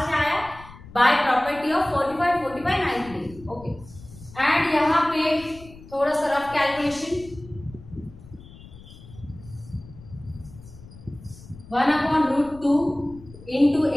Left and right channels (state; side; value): noise; left; rumble, 19 dB below the sound